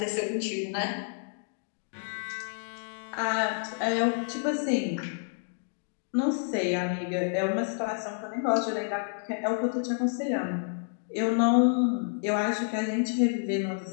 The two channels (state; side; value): silent; right; digital silence